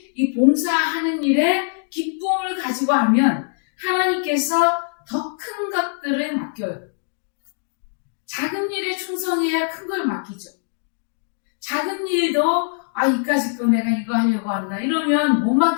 이 봉사하는 일에 기쁨을 가지고 하면 하나님께서 더 큰 것들을 맡겨요. 작은 일에 충성해야 큰 걸 맡기죠. 작은 일도 이까짓 거 내가 이거 하려고 한다 이러면 못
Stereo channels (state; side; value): silent; right; digital silence